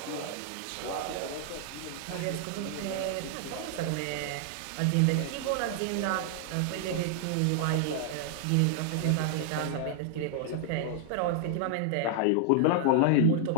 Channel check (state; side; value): different; both; correlation 0.00